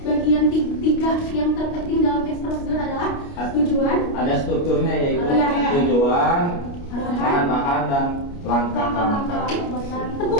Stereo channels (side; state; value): right; late; 29 ms